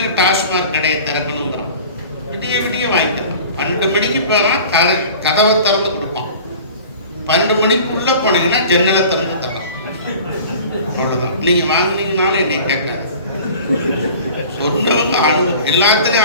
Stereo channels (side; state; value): both; inverted; correlation -0.43